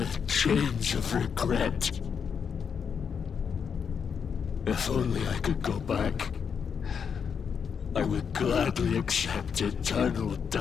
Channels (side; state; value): right; quieter; 6.8 dB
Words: chains of regret. If only I could go back, I would gladly accept eternal